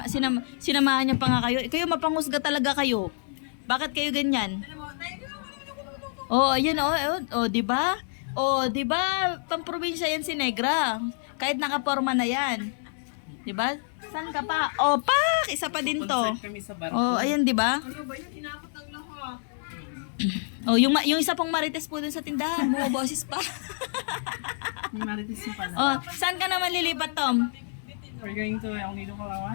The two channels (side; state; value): right; silent; digital silence